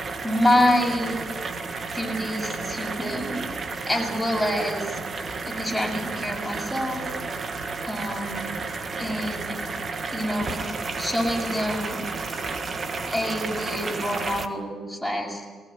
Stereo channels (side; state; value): both; normal; correlation 0.86